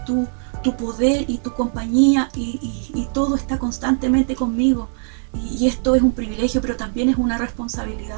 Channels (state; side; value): silent; left; 61 dB below the other